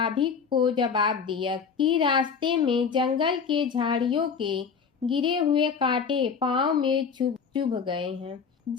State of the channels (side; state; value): right; quieter; 6.1 dB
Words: को जवाब दिया कि रास्ते में जंगल के झाड़ियों के गिरे हुए कांटे पांव में चुभ गए हैं।